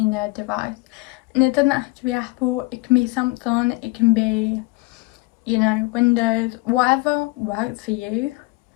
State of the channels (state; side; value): quieter; right; 24.0 dB